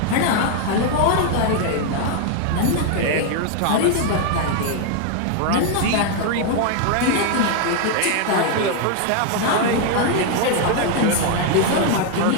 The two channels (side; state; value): both; different; correlation 0.00